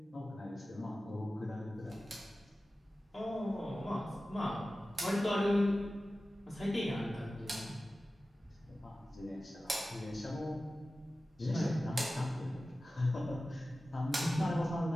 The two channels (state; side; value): normal; both; correlation 0.95